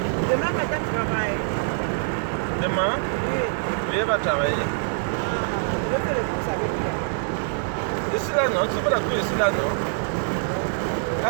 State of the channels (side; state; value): left; silent; 58 dB below the other